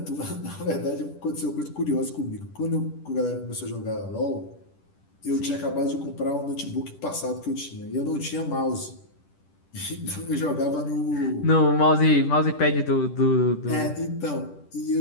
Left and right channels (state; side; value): late; right; 10 ms